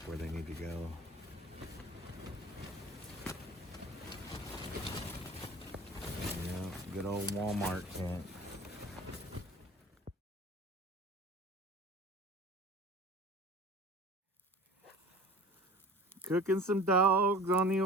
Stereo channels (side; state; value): both; normal; correlation 0.41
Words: where they need to go. Yeah, good old Walmart tent. Cooking some dogs on the